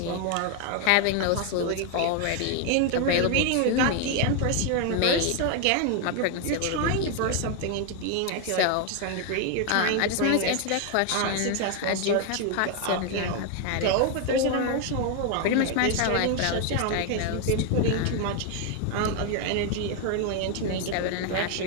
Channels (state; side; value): different; both; correlation 0.01